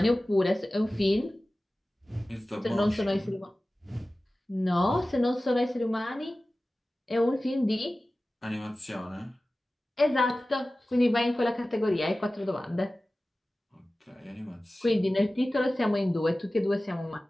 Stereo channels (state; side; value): normal; both; correlation 0.96